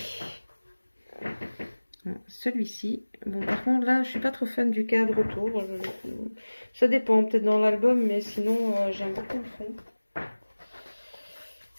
celui-ci. Bon, par contre, là, je suis pas trop fan du cadre autour. Ça dépend, peut-être dans l'album, mais sinon, j'aime beaucoup le fond.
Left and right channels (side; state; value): both; inverted; correlation -1.00